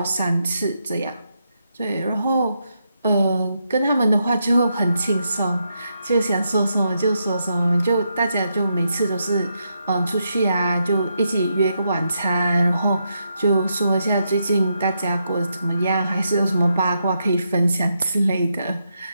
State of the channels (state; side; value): inverted; both; correlation -0.82